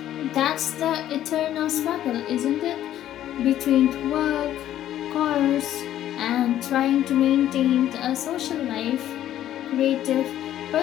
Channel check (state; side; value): quieter; right; 12.0 dB